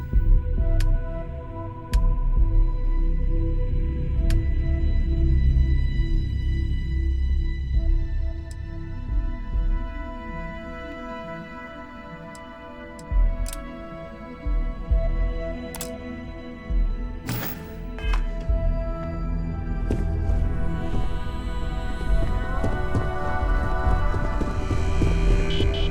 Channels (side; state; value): both; identical; correlation 1.00